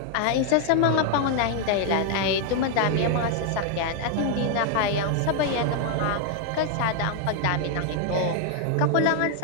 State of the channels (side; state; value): both; different; correlation 0.00